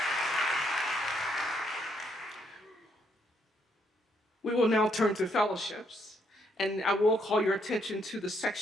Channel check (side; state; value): both; normal; correlation 0.73